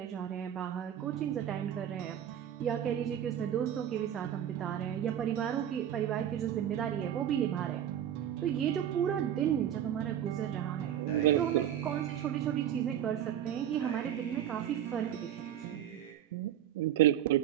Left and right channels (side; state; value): left; quieter; 10.4 dB